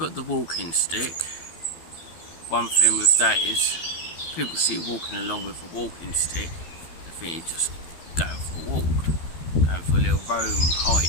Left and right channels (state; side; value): late; right; 12 ms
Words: the walking stick. One thing with that is, people see you walking along with a walking stick, they think you're just going for a walk, going for a little roam,